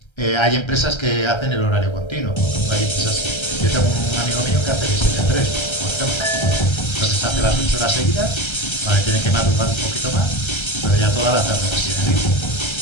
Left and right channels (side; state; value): right; late; 1.3 ms